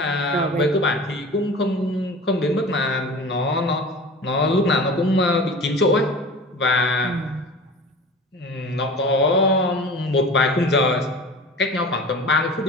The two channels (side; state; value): both; normal; correlation 0.37